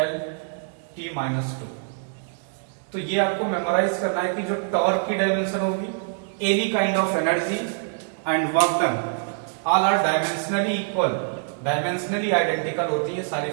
माइनस 2। तो ये आपको मेमोराइज करना है कि जो टॉर्क की डायमेंशन होगी, any kind of energy and work done all are dimensionally equal, dimensionally identical होती है सारी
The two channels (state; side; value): silent; left; digital silence